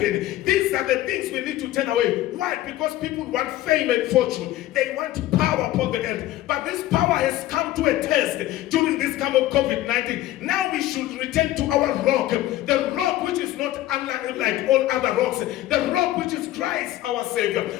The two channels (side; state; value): right; quieter; 14.9 dB